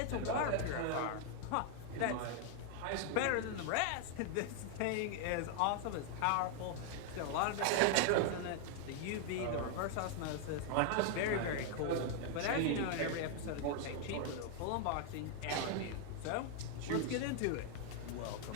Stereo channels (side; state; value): both; different; correlation 0.00